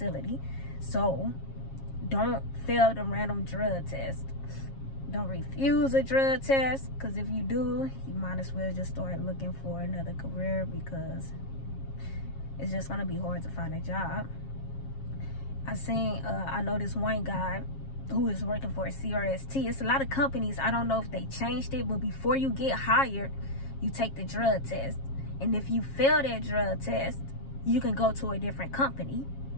So don't fail the random drug test. Don't refuse a drug test, because if you do, you might as well just start looking for another career, because it's just gonna be hard to find a job. I know this one guy who is working for a CRST. It's a lot of companies, I don't know if they changed it, but before you get hired, you take the drug test. And if you fail that drug test, you can go to a different company.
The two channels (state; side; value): late; right; 7.4 ms